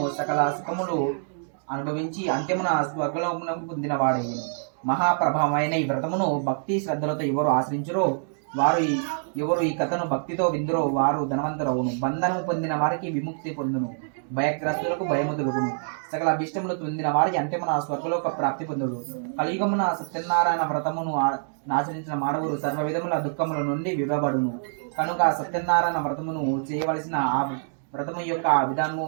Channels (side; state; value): left; silent; digital silence